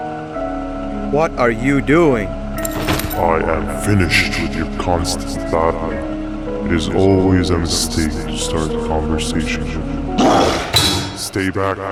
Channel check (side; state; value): both; identical; correlation 1.00